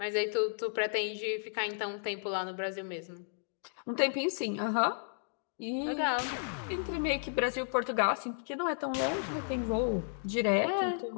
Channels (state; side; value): silent; right; digital silence